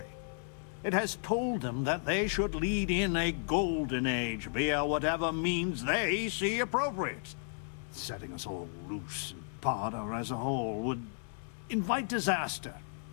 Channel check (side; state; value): right; silent; 55 dB below the other